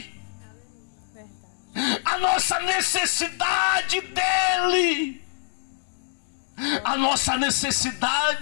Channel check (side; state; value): right; silent; digital silence